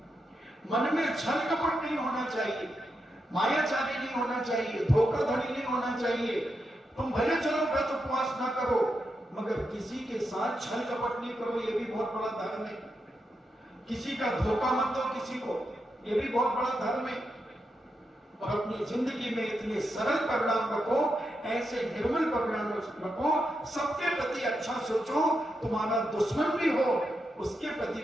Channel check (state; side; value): normal; both; correlation 0.85